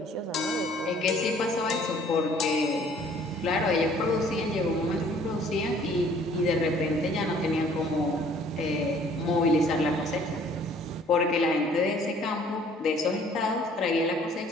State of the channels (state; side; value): normal; both; correlation 0.57